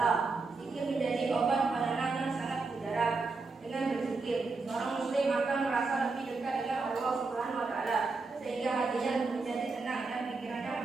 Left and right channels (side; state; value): left; quieter; 4.0 dB